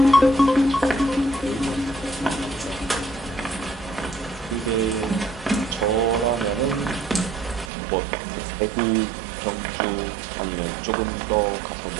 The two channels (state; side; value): drops out; left; at 7.7 s